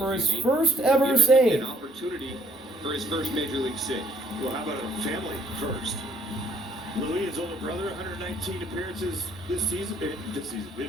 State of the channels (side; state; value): both; normal; correlation 0.62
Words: his uni. first Will ever give him save. An opportunity for his first major league save. Well, how about a family first? Louis, his older brother, 119 appearances this season.